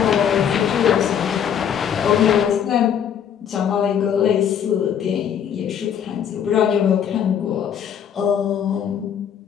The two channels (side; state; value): right; quieter; 8.6 dB